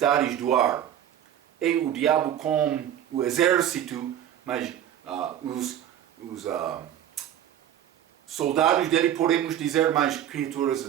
do ar é o diabo com o exército, mas os soldados dele, podemos dizer, mais criaturas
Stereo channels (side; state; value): left; quieter; 10.7 dB